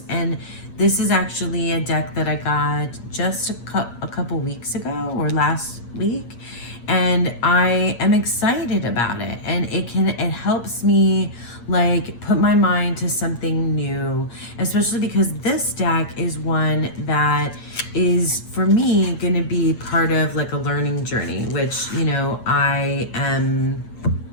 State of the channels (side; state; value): right; late; 8.5 ms